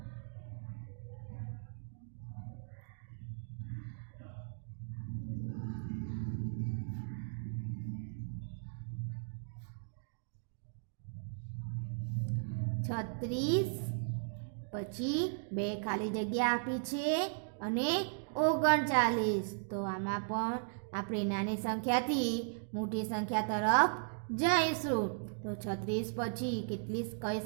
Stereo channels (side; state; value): left; silent; digital silence